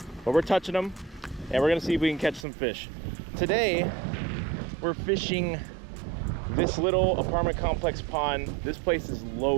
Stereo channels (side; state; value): left; drops out; at 2.5 s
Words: But we're touching them and we're gonna see if we can catch some fish. Today, we're fishing this little apartment complex pond. This place is